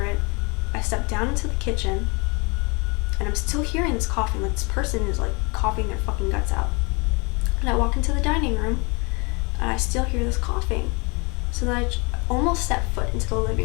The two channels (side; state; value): right; quieter; 30.0 dB